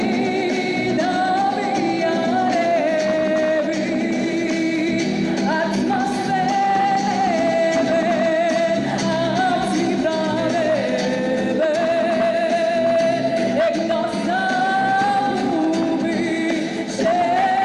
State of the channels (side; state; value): both; identical; correlation 1.00